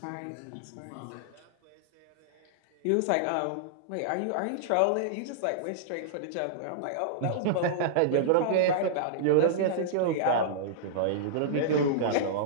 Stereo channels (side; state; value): both; different; correlation -0.02